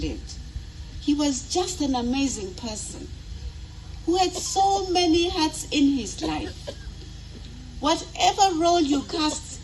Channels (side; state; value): both; identical; correlation 1.00